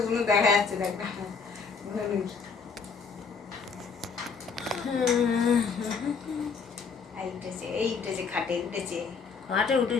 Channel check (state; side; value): quieter; right; 5.4 dB